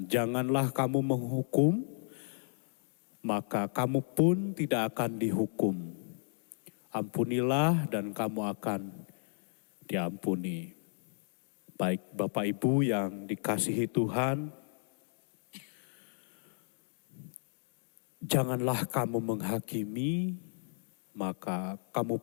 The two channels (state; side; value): silent; right; digital silence